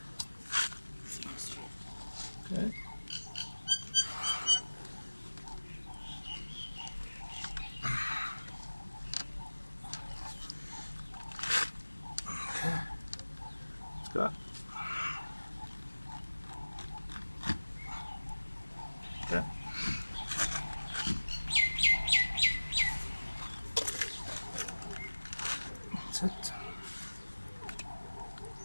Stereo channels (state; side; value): inverted; both; correlation -1.00